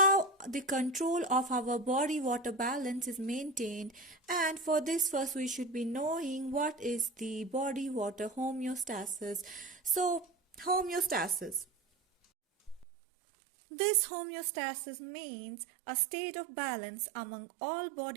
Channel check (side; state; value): left; drops out; at 12.9 s